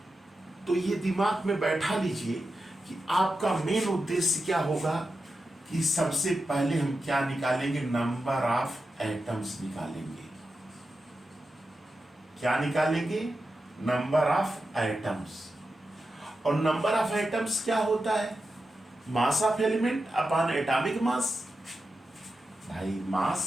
तो ये दिमाग में बैठा लीजिए कि आपका मेन उद्देश्य क्या होगा कि सबसे पहले हम क्या निकालेंगे? नंबर ऑफ एटम्स निकालेंगे। क्या निकालेंगे? Number of atoms. और नंबर ऑफ एटम्स क्या होता है? मास ऑफ एलिमेंट अपॉन एटॉमिक मास। भाई मास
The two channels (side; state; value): both; normal; correlation 0.90